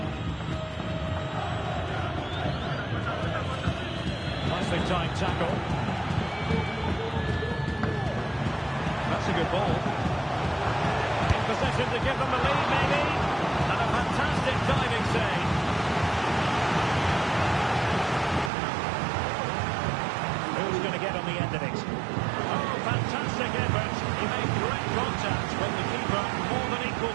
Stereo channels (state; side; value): drops out; left; at 18.5 s